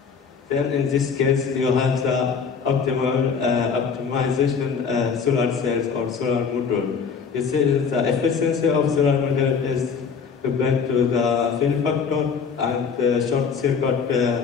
Then in this case, you have the optimization solar cells or solar module. You see, the efficiency of solar model is depend to the fill factor and the short circuit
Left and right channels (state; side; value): quieter; right; 6.0 dB